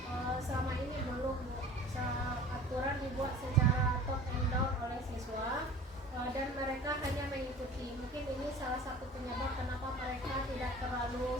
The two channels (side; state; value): both; normal; correlation 0.43